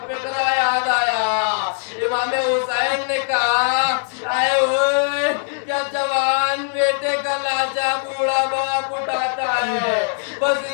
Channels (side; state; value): right; silent; 65 dB below the other